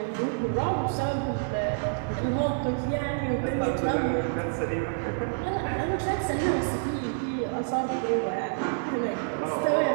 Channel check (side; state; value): left; silent; digital silence